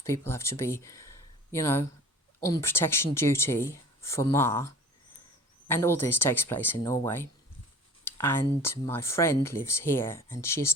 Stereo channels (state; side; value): normal; both; correlation 0.42